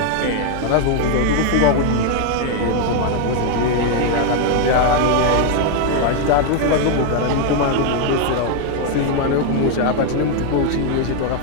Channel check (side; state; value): both; different; correlation 0.01